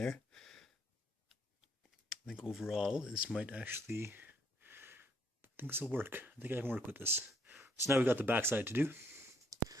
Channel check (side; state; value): both; normal; correlation 0.68